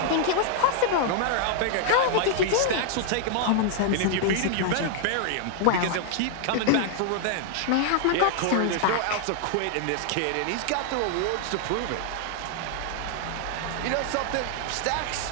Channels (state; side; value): different; both; correlation -0.01